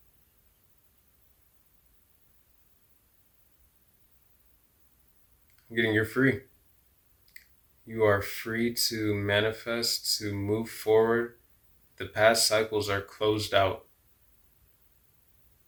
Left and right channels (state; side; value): identical; both; correlation 1.00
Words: You're free. You are free to manifest, to move forward. The past cycles are closed out.